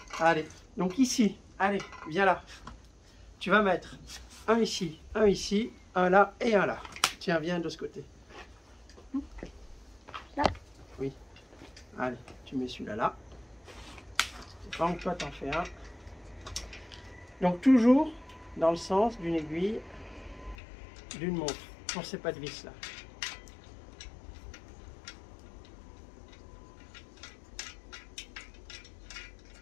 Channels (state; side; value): drops out; right; at 20.6 s